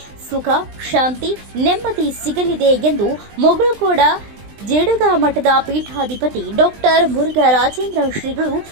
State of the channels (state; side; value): late; left; 20 ms